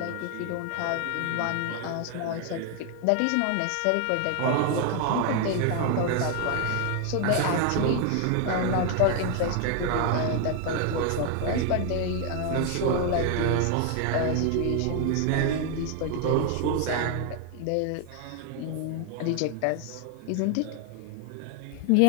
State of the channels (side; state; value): both; different; correlation 0.00